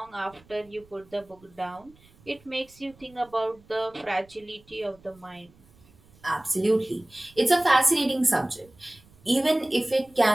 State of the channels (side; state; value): right; noise; rumble, 28 dB below the sound